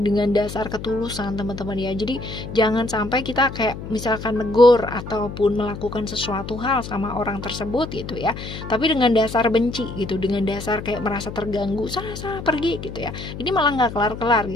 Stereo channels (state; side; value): noise; left; hum, 10 dB below the sound